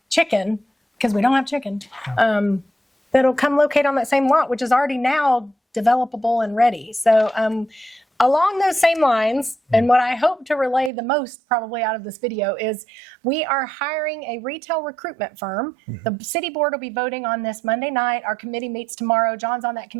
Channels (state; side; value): drops out; left; at 10.9 s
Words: chicken, because we don't have chicken, that'll come locate on that same lot, which is already now developable and ready. So along those same lines, and what I hope to relay the most probably out of this video is we are hiring a retail recruitment firm. The city board will be voting on this Monday night. Our committee meets tomorrow. John's on that